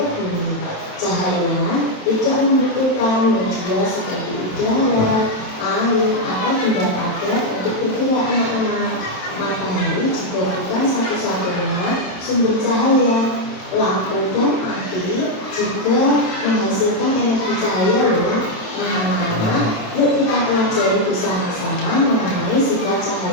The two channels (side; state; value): right; late; 27 ms